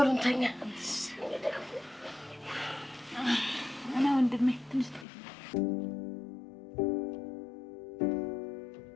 እንተኛ። እና ወንድሜ ትንሽ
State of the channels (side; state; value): right; drops out; at 5.1 s